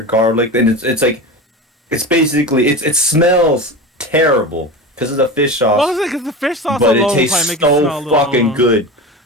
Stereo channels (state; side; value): normal; both; correlation 0.27